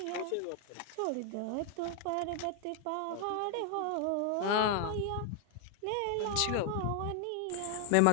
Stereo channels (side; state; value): both; different; correlation 0.00